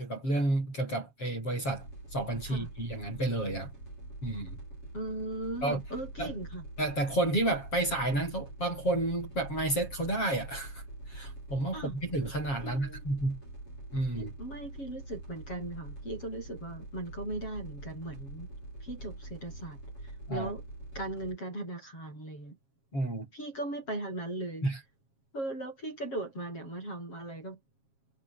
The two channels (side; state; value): right; late; 7.3 ms